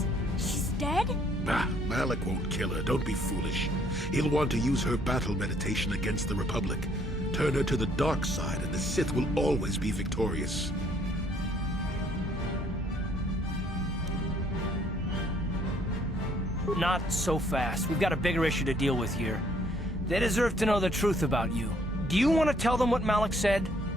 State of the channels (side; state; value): both; normal; correlation 0.64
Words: dead? Bah, Malik won't kill her. Don't be foolish. He'll want to use her battle meditation against the Republic. Turn her to the dark side, and the Sith will always be victorious. Not so fast. We've got a bigger issue to deal with here. They deserve to know the truth about you. Do you want to tell them what Malik said,